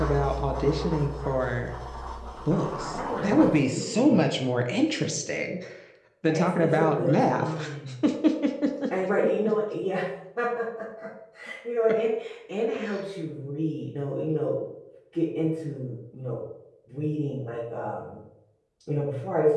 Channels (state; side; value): identical; both; correlation 1.00